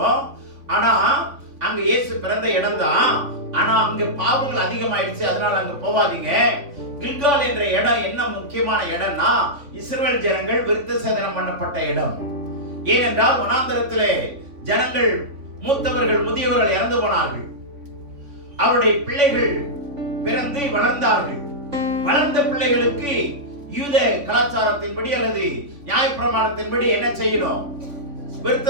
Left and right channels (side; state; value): left; late; 3.5 ms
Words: ஆனா அங்க இயேசு பிறந்த இடம் தான். ஆனா அங்க பாவங்கள் அதிகமாயிடுச்சு, அதனால அங்க போவாதீங்க. கில்கால் என்ற இடம் என்ன முக்கியமான இடம்னா, இஸ்ரவேல் ஜனங்கள் விருத்த சேதனம் பண்ணப்பட்ட இடம். ஏனென்றால் வனாந்தரத்திலே ஜனங்கள், மூத்தவர்கள் முதியவர்கள் இறந்து போனார்கள். அவருடைய பிள்ளைகள் பிறந்து வளர்ந்தார்கள். வளர்ந்த பிள்ளைகளுக்கு யூத கலாச்சாரத்தின்படி அல்லது நியாயப்பிரமாணத்தின்படி என்ன செய்யணும்? விருத்த